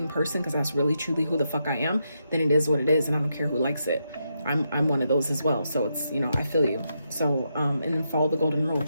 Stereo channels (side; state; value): both; inverted; correlation -0.83